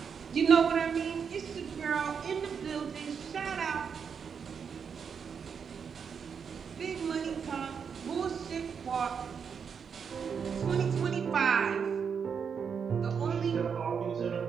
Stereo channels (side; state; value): left; quieter; 6.6 dB